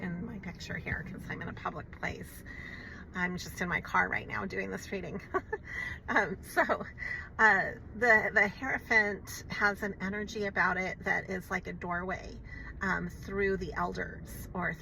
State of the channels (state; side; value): identical; both; correlation 1.00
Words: my picture here because I'm in a public place. I'm just in my car right now doing this reading. The Hierophant has an energy about it that is like a doorway through the elders or